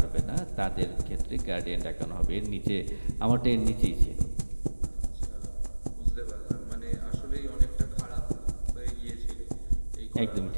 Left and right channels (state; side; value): inverted; both; correlation -1.00